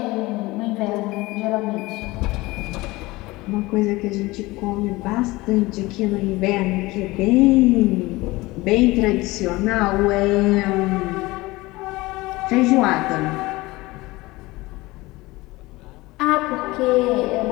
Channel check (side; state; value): right; quieter; 20.8 dB